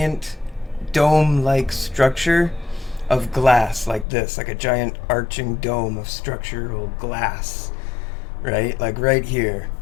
dome-like structure of glass like this, like a giant arching dome of structural glass, right? Like right here,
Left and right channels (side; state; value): right; drops out; at 4.0 s